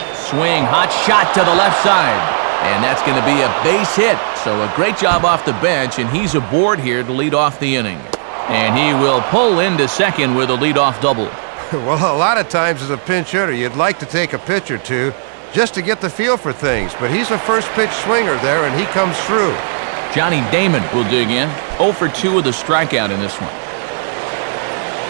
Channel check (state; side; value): silent; left; digital silence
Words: Swing, hot shot to the left side. And that's going to be a base hit. So a great job off the bench, and he's aboard here to lead off the inning. And he will pull into second with a leadoff double. Well, a lot of times as a pinch hitter, you'd like to take a pitch or two just to get the feel for things. But he's a first pitch swinger there, and he comes through. Johnny Damon will dig in. 0 for 2 with a strikeout in this one.